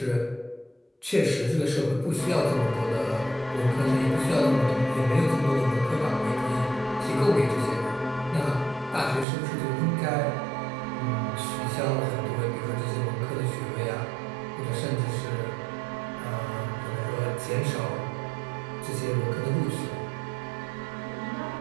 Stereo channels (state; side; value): drops out; left; at 9.2 s